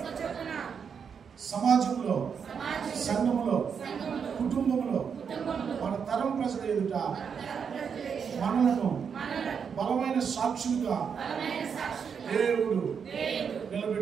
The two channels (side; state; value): left; quieter; 6.7 dB